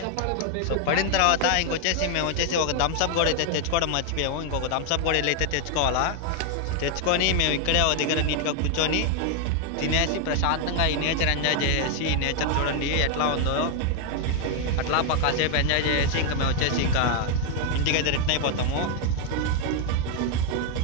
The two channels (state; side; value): different; both; correlation 0.01